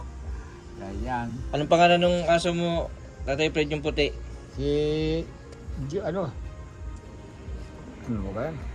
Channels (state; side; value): identical; both; correlation 1.00